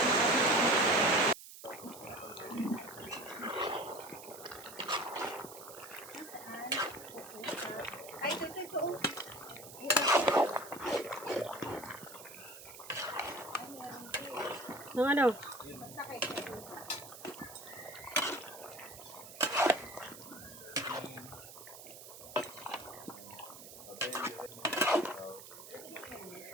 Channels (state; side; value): noise; right; hiss, 15 dB below the sound